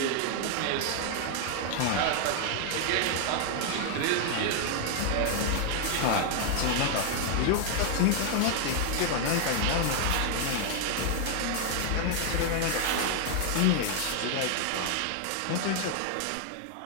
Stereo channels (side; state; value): both; different; correlation 0.00